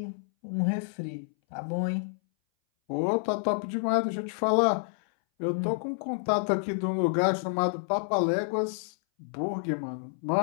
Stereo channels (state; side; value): silent; right; 59 dB below the other